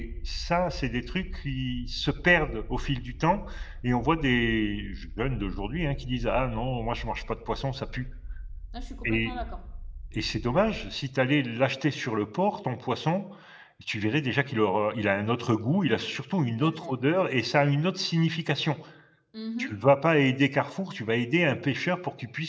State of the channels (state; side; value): identical; both; correlation 1.00